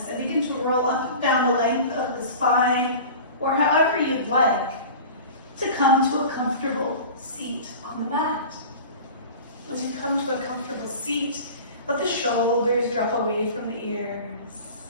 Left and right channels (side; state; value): both; inverted; correlation -0.37